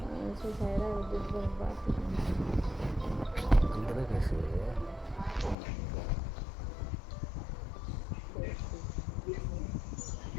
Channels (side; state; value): right; drops out; at 5.6 s